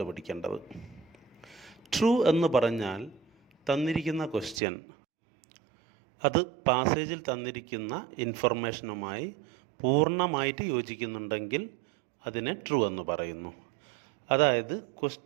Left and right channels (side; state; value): left; drops out; at 4.6 s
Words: ട്രൂ എന്ന് പറഞ്ഞാൽ തന്നിരിക്കുന്ന ക്വസ്റ്റ്യൻ അത് പാസേജിൽ തന്നിരിക്കുന്ന ഇൻഫർമേഷനുമായി പൂർണ്ണമായിട്ട് യോജിക്കുന്നുണ്ടെങ്കിൽ അതിനെ ട്രൂ എന്ന് പറയുന്നു. അതായത്